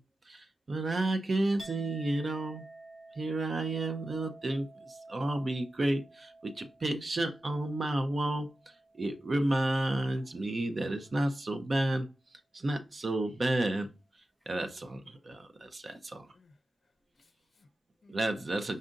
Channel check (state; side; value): normal; both; correlation 0.93